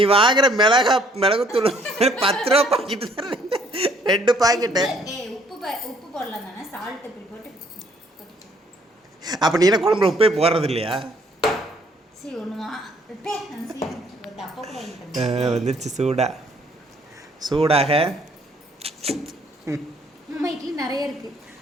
வாங்குற மிளகுத்தூள் 10 ரூபா பாக்கெட்டு தான். 2 பாக்கெட்டு. உப்பு போடலாம் தானே? சால்ட் இப்படி போட்டு. அப்போ நீ என்ன குழம்புல உப்பே போடுறது இல்லையா? சரி ஒன்றுமா டப்பா வந்துருச்சு சூடாக. அம்மா இட்லி நிறைய இருக்கு.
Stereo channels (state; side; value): normal; both; correlation 0.64